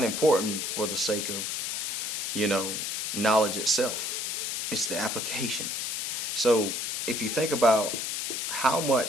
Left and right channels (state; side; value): noise; left; hiss, 2 dB below the sound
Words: important for the sake of, you know, knowledge itself. It's the application. So if you think about how